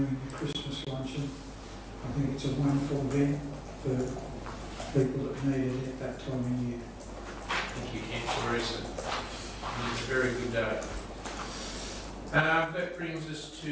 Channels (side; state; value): both; identical; correlation 1.00